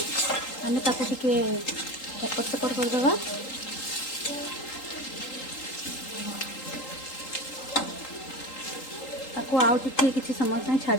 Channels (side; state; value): right; late; 3.8 ms